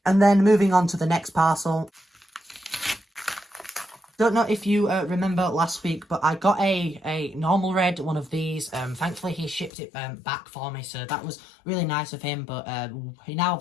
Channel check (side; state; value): right; drops out; at 9.7 s